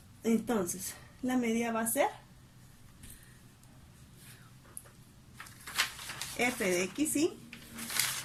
Entonces, la media va a ser f de xy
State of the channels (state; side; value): identical; both; correlation 1.00